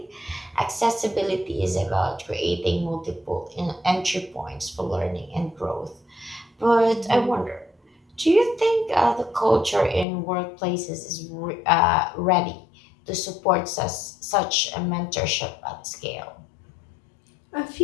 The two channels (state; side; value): drops out; right; at 10.1 s